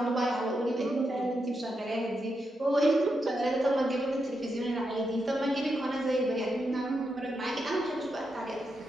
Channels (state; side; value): normal; both; correlation 0.85